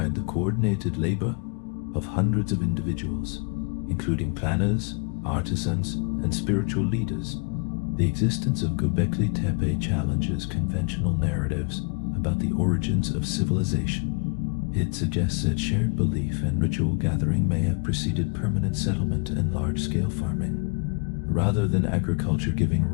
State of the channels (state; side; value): quieter; right; 37.1 dB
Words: the coordinated labor of hundreds of individuals, including planners, artisans, and spiritual leaders. The existence of Göbekli Tepe challenges conventional narratives about the origins of civilization. It suggests that shared belief and ritual gathering may have preceded permanent settlement and large-scale farming. Rather than agriculture giving